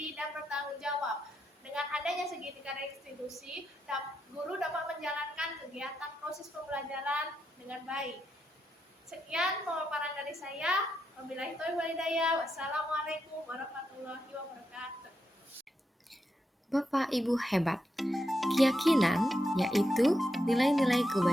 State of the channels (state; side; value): normal; both; correlation 0.84